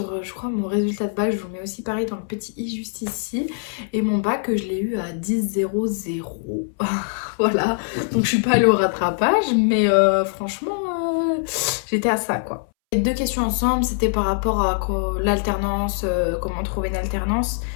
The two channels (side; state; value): right; silent; 64 dB below the other